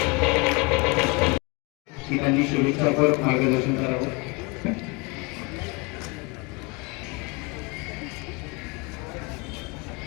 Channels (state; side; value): quieter; right; 28.8 dB